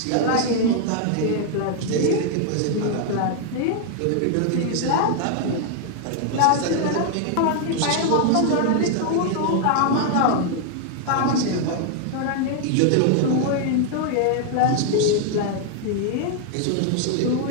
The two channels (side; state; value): both; different; correlation 0.00